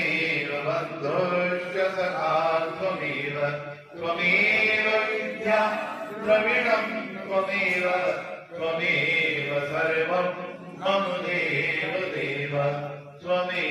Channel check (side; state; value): both; identical; correlation 1.00